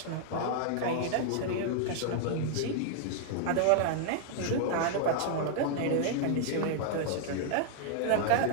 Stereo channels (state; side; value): different; both; correlation 0.00